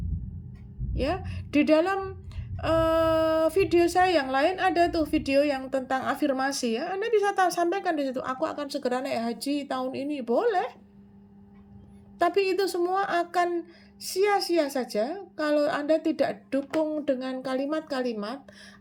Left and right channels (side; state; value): both; identical; correlation 1.00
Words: Ya, di dalam video saya yang lain ada tuh video yang tentang afirmasi ya. Anda bisa sampaikan di situ, aku akan segera naik haji tahun ini, boleh. Tapi itu semua akan sia-sia saja kalau Anda tidak dukung dengan kalimat-kalimat